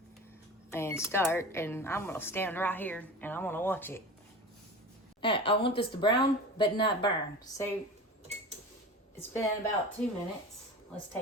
and start, and I'm gonna stand right here and I'm gonna watch it. I want this to brown but not burn. So it's been about 2 minutes. Let's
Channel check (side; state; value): both; normal; correlation 0.33